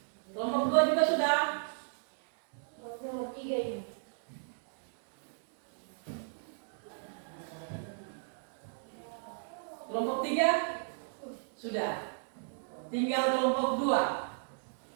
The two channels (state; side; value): silent; left; digital silence